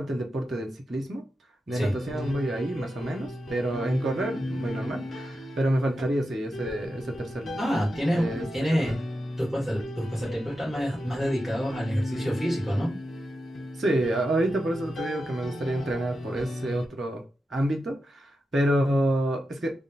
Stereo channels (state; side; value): normal; both; correlation 0.89